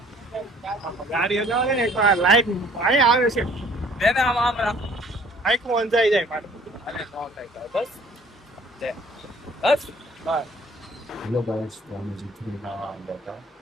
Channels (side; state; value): both; normal; correlation 0.55